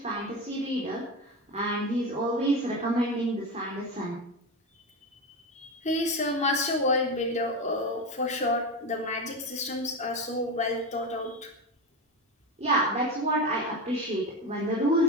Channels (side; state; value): both; normal; correlation 0.19